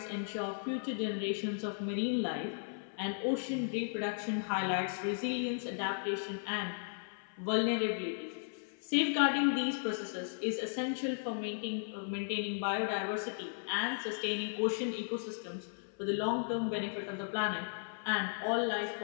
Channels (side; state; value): right; silent; 54 dB below the other